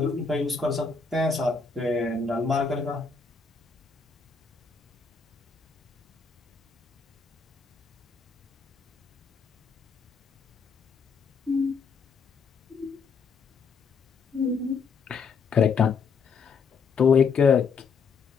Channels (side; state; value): right; quieter; 5.3 dB